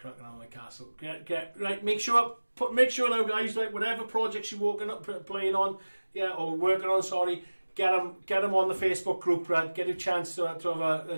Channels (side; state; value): both; inverted; correlation -1.00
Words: on my castle. Get right. Make sure now, guys. Like whatever projects you're playing on, or working on. Sorry, get them on the Facebook group. Right, get a chance to have